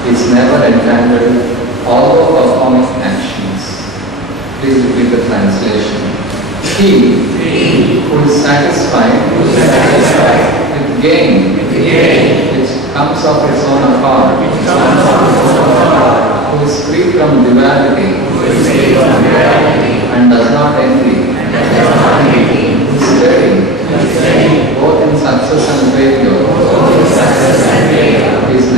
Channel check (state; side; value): normal; both; correlation 0.31